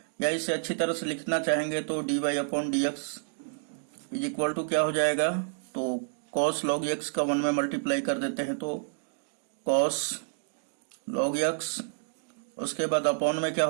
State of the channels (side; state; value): left; silent; digital silence